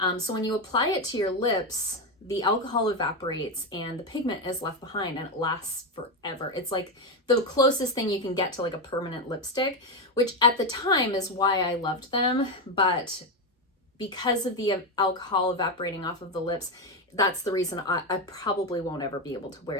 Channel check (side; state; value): both; normal; correlation 0.11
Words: So when you apply it to your lips, the alcohol evaporates and the pigment is left behind, and it lasts forever. It's like the closest thing you can get to like a permanent lipstick, which at the time is why I loved them. But because of the alcohol evaporating off of the lips, that's the reason I probably won't ever be able to